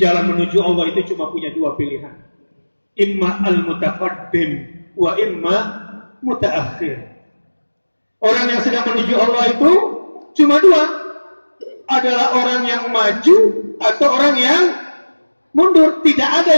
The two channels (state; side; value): inverted; both; correlation -1.00